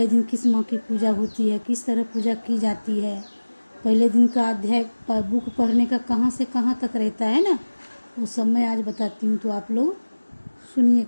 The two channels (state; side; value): inverted; both; correlation -1.00